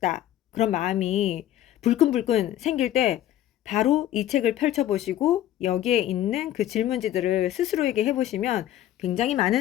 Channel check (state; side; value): quieter; right; 12.5 dB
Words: 그런 마음이 불끈불끈 생길 때 바로 이 책을 펼쳐보시고 여기에 있는 그 질문지들을 스스로에게 해보시면 굉장히